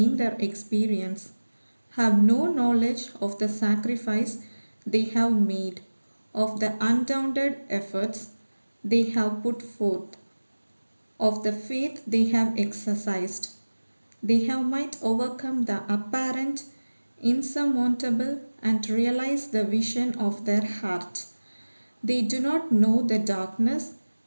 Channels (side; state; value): both; inverted; correlation -1.00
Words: their experience, have no knowledge of the sacrifice they have made, of the undaunted efforts they have put forth, of the faith they have exercised. They have might overcome the apparent insurmountable and realize the vision of their heart. They do not know the darkness